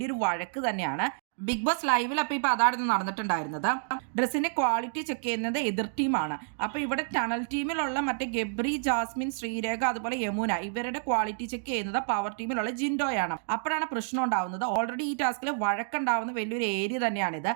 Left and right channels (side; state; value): left; silent; digital silence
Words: വഴക്ക് തന്നെയാണ്. ബിഗ് ബോസ് ലൈവിൽ അപ്പോൾ ഇപ്പോൾ അതായിരുന്നു നടന്നിട്ടുണ്ടായിരുന്നത്. ഡ്രസ്സിന്റെ ക്വാളിറ്റി ചെക്ക് ചെയ്യുന്നത് എതിർ ടീമാണ്. അപ്പോൾ ഇവിടെ ടണൽ ടീമിലുള്ള മറ്റേ ഗബ്രി, ജാസ്മിൻ, ശ്രീരേഖ അതുപോലെ യമുന ഇവരുടെ ക്വാളിറ്റി ചെക്ക് ചെയ്യുന്നത് പവർ ടീമിലുള്ള ജിൻഡോയാണ്. അപ്പോഴാണ് പ്രശ്നം ഉണ്ടാവുന്നത്. ഓൾറെഡി ഈ ടാസ്കിൽ വഴക്കുണ്ടാവുന്ന വലിയൊരു ഏരിയ തന്നെയാണിത്.